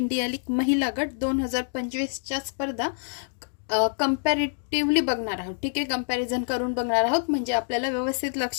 लीग महिला गट 2025च्या स्पर्धा कंपॅरेटिव्हली बघणार आहोत. ठीक आहे, कंपॅरिझन करून बघणार आहोत म्हणजे आपल्याला व्यवस्थित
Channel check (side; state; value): right; silent; digital silence